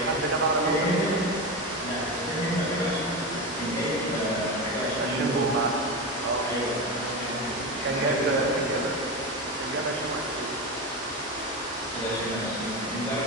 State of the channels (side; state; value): both; normal; correlation 0.19